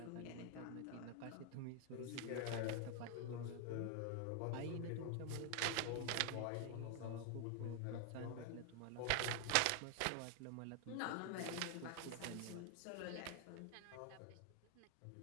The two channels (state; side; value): different; both; correlation 0.00